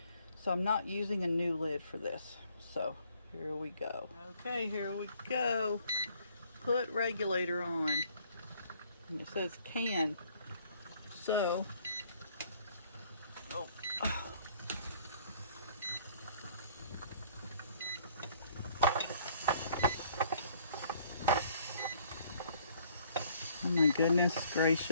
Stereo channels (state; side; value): inverted; both; correlation -0.60